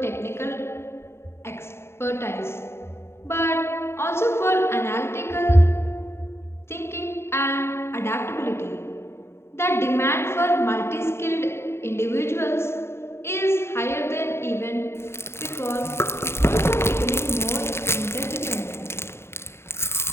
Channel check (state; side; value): late; right; 0.12 ms